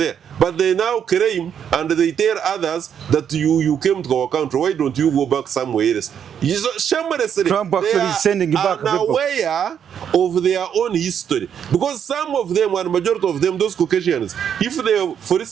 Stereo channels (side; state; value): left; quieter; 8.4 dB